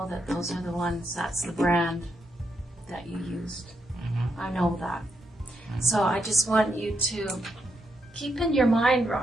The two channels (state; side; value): normal; both; correlation 0.80